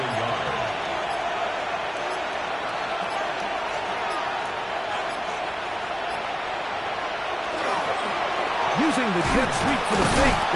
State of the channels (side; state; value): both; identical; correlation 1.00